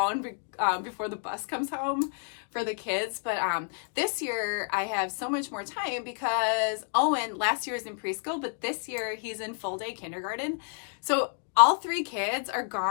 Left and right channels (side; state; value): right; silent; 58 dB below the other